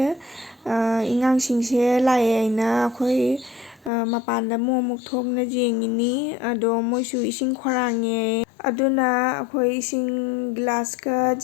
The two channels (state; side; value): drops out; right; at 3.9 s